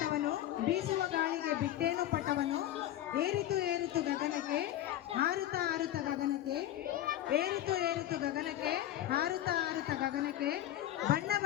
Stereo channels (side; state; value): right; quieter; 13.0 dB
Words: ಬೀಸುವ ಗಾಳಿಗೆ ಬಿಟ್ಟೇನು ಪಟವನು, ಏರಿತು ಏರಿತು ಗಗನಕ್ಕೆ, ಹಾರುತ್ತ ಹಾರುತ್ತ ಗಗನಕ್ಕೆ, ಏರಿತು ಏರಿತು ಗಗನಕ್ಕೆ, ಹಾರುತ್ತ ಹಾರುತ್ತ ಗಗನಕ್ಕೆ, ಬಣ್ಣ